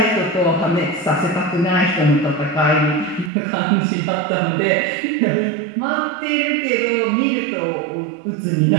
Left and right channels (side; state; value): left; drops out; at 3.3 s